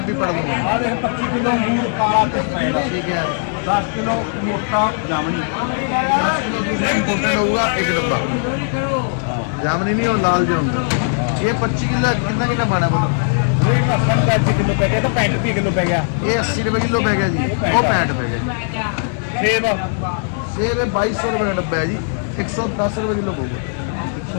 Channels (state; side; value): silent; right; digital silence